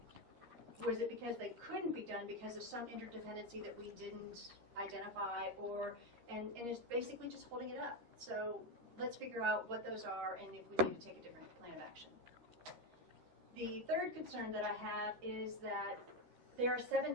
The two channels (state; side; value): late; left; 13 ms